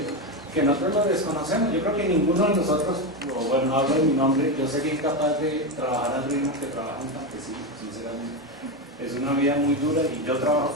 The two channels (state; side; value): normal; both; correlation 0.13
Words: que nosotros lo desconocemos. Yo creo que ninguno de nosotros, o bueno, hablo de mi nombre, yo sería incapaz de trabajar al ritmo que trabaja un campesino, sinceramente. Es una vida muy dura y yo trabajo